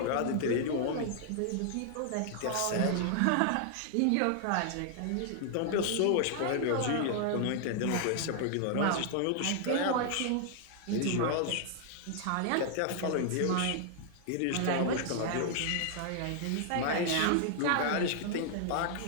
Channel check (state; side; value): different; both; correlation 0.00